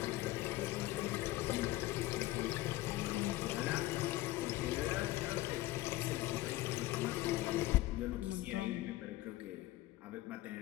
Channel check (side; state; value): right; quieter; 16.9 dB